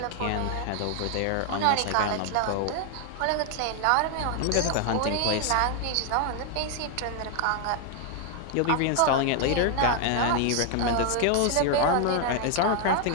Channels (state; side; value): different; both; correlation 0.01